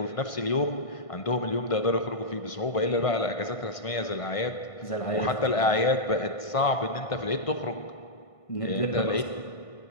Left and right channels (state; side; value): late; right; 1.5 ms